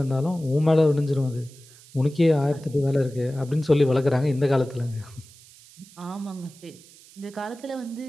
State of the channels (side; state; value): right; noise; hiss, 23 dB below the sound